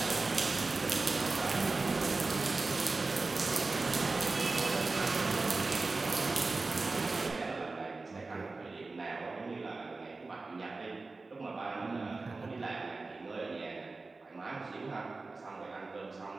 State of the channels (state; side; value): quieter; left; 3.7 dB